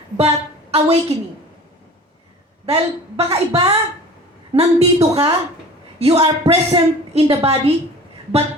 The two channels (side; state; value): both; normal; correlation 0.41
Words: but awakening. Dahil baka iba, nandito ka, you are present in the body, but